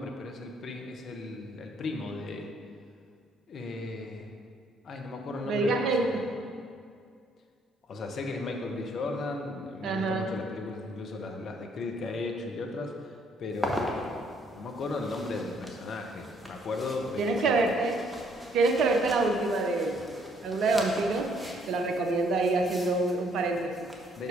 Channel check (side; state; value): both; normal; correlation 0.66